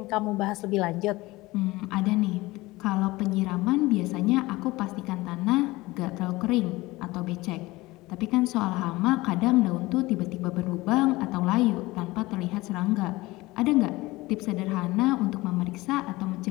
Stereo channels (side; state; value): right; quieter; 20.3 dB